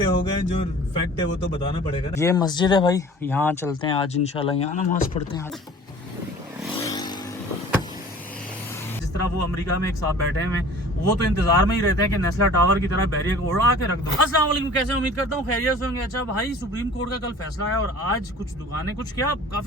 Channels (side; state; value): both; normal; correlation 0.46